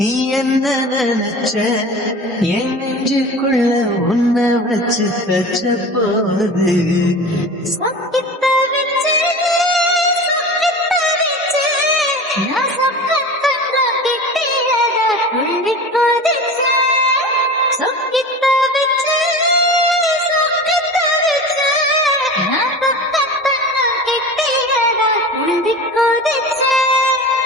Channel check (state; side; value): normal; both; correlation 0.34